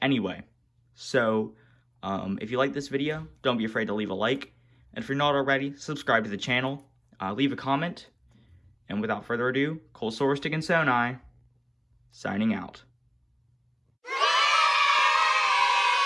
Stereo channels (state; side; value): identical; both; correlation 1.00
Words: anyway. So if you like this video, don't be afraid to leave a like. And if you're not already, subscribe to the channel, leave a comment. And without further ado, Colesaurus Stick and Sonai, signing out.